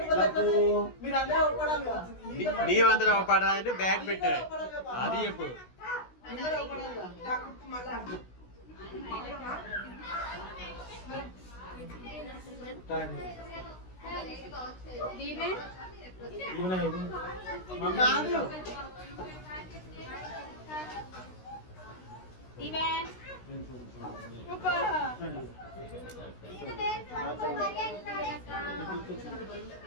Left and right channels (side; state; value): right; late; 16 ms